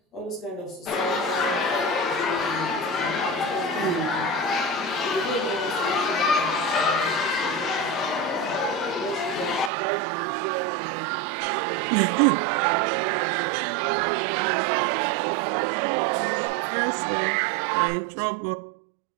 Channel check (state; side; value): drops out; left; at 9.7 s